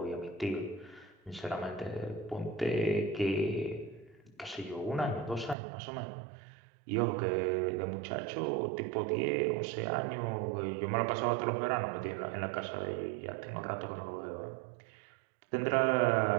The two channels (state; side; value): drops out; left; at 5.6 s